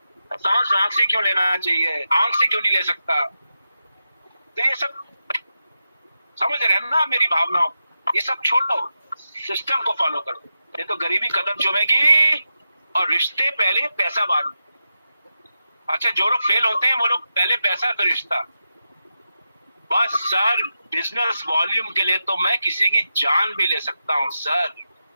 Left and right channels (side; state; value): both; inverted; correlation -0.89